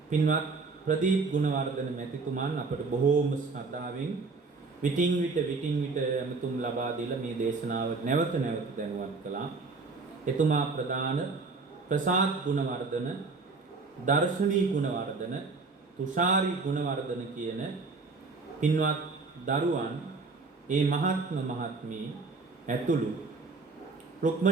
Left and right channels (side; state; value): left; quieter; 4.1 dB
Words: පින්වත් ප්‍රදීප් ගුණවර්ධන මැතිතුමන් අපට බොහෝම ශ්‍රද්ධාවෙන් විටින් විට ඇමතුම් ලබා දීලා මේ දේශනාව නැවත දැනුවත් කළා. එතුමා ප්‍රදාන ප්‍රසාද් ගුණවර්ධන, දර්ශනී ගුණවර්ධන, තුෂාරි ගුණවර්ධන කියන පින්වත් දරුවන් ඒ මහත්මී ඇතුළු